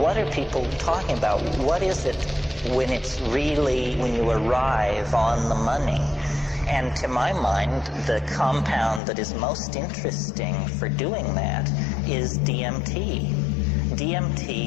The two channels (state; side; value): drops out; right; at 9.0 s